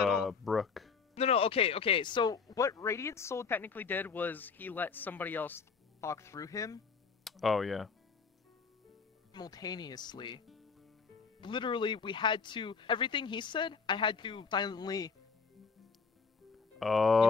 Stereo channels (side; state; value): right; quieter; 5.3 dB